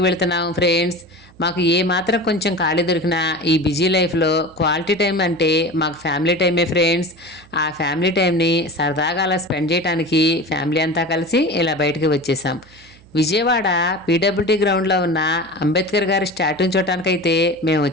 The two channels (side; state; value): right; noise; hum, 26 dB below the sound